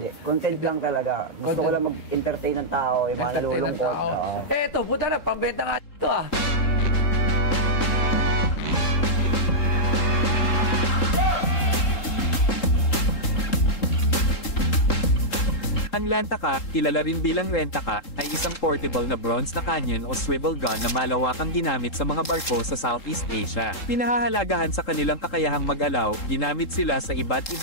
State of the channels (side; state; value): right; late; 3.7 ms